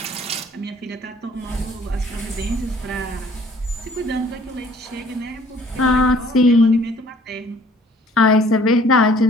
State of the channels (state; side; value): normal; both; correlation 0.56